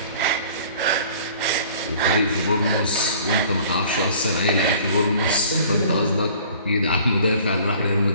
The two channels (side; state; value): both; inverted; correlation -0.50